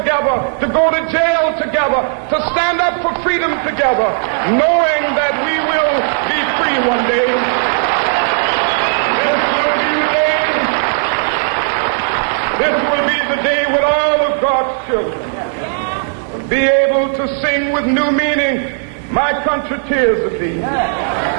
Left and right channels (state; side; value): silent; left; digital silence